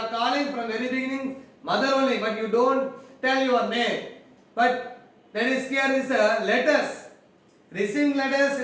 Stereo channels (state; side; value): identical; both; correlation 1.00